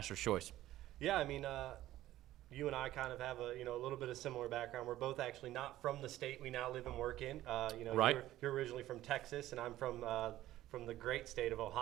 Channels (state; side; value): quieter; left; 14.6 dB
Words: Choice. Yeah, I mean, you and I kind of have a little bit of similar background. We're both actually not from the state we now live and work in. Right. You're originally from Texas, and I'm from the great state of